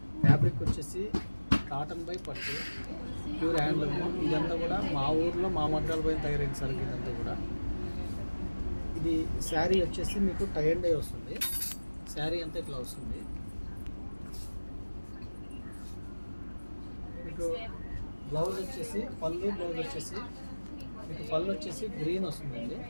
ఫ్యాబ్రిక్ వచ్చేసి కాటన్ బై పట్టు, ప్యూర్ హ్యాండ్లూమ్. ఇదంతా కూడా మా ఊర్లో మా మగ్గాల పైన తయారైన సరుకు ఇదంతా కూడా. ఇది శారీ వచ్చేసి మీకు టై అండ్ డై వస్తుంది. శారీ అంతా ఇట్లా వస్తుంది. మీకు బ్లౌజ్ వచ్చేసి బ్లౌజ్ వచ్చేసి మీకు పళ్ళు వచ్చేసి గ్రీన్ వస్తుందండి.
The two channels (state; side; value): inverted; both; correlation -1.00